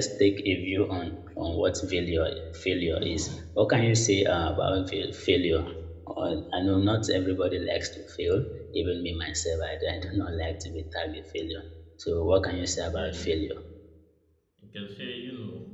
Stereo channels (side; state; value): both; identical; correlation 1.00